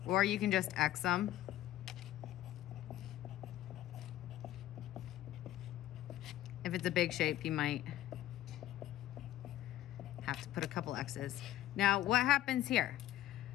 or you can just X them. If it's a big shape, you might have to put a couple X's. Now, what happens here?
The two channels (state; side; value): quieter; right; 13.8 dB